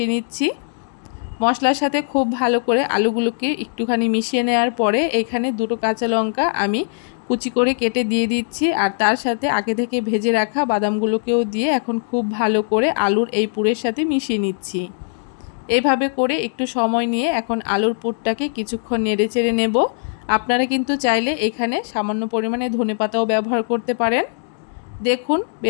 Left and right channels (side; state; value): right; silent; digital silence